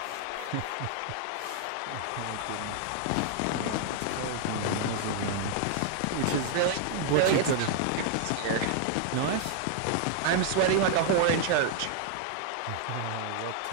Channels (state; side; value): different; both; correlation 0.00